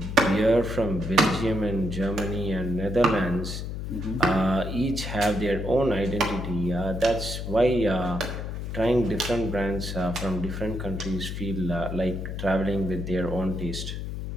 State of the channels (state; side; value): noise; left; hum, 5 dB below the sound